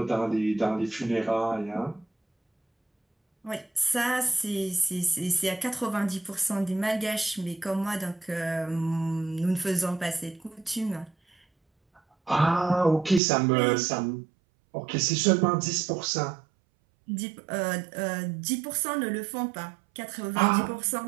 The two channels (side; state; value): left; drops out; at 13.2 s